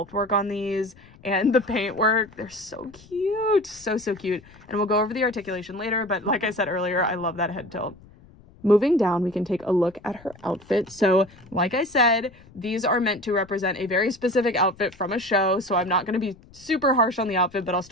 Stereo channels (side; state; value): left; noise; rumble, 24 dB below the sound